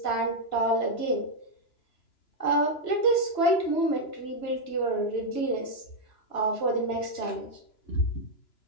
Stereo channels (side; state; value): right; late; 2.9 ms